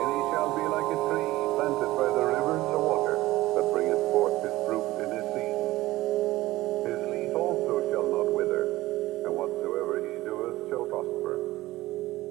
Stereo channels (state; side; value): quieter; left; 17.5 dB